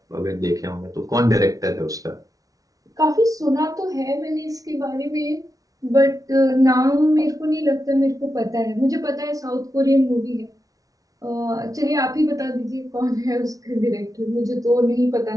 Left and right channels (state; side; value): late; left; 0.17 ms